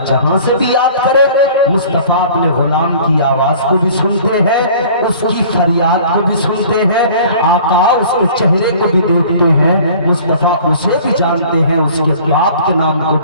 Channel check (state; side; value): inverted; both; correlation -0.48